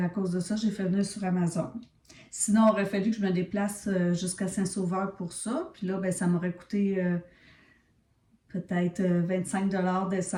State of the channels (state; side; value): identical; both; correlation 1.00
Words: cause de ça, j'ai fait venir sur Amazon. Sinon, il aurait fallu que je me déplace jusqu'à Saint-Sauveur pour ça. Puis là, ben, ça m'aurait coûté peut-être 25 $